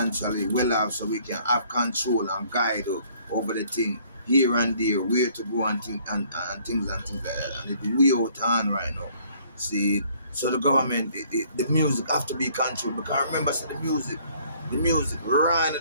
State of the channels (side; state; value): both; inverted; correlation -0.60